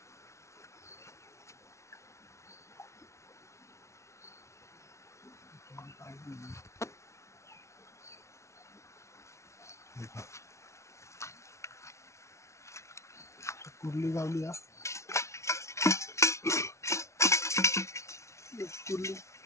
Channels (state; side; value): late; right; 0.13 ms